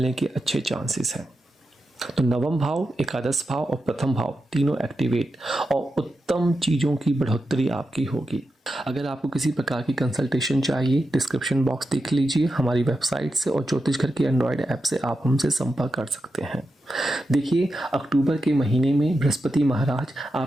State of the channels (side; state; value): both; normal; correlation 0.89